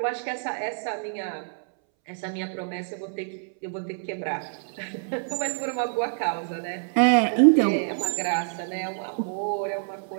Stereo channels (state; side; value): silent; left; 60 dB below the other